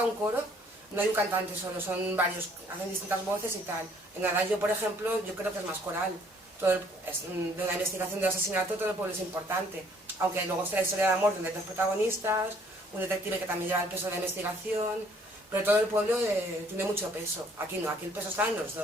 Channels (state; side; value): normal; both; correlation 0.61